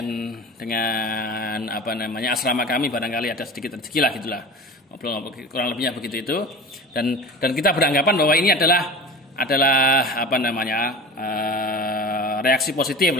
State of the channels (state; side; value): normal; both; correlation 0.34